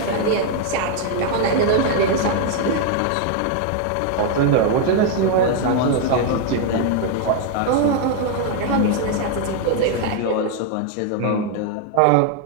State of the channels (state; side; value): different; both; correlation 0.00